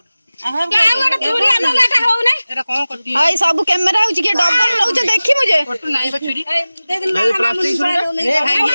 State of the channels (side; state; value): both; inverted; correlation -0.97